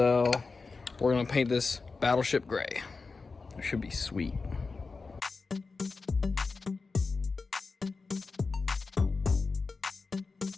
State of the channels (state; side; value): quieter; right; 4.2 dB